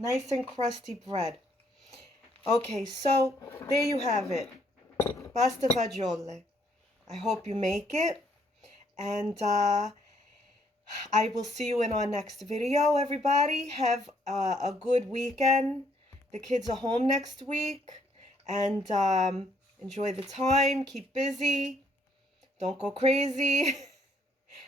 and crusty bread. Okay, so there you have it. Pasta fagiole. I hope you make it. And I will see you in our next video, everybody. Have a good weekend. The kids are home next week. And enjoy the time. Keep busy. Don't go crazy.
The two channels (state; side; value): normal; both; correlation 0.68